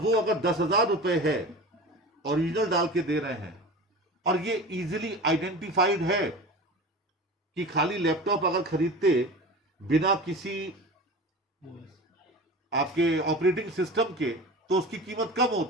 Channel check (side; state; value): both; normal; correlation 0.33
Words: वो अगर 10,000 रुपए है, ओरिजिनल डाल के दे रहे हैं, और ये इजीली आइडेंटिफाइड है कि खाली लैपटॉप अगर खरीदते बिना किसी आपके ऑपरेटिंग सिस्टम के तो उसकी कीमत कम